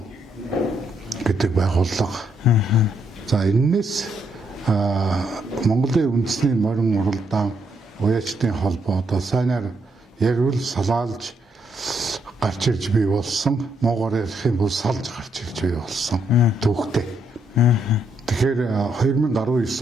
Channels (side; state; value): both; normal; correlation 0.75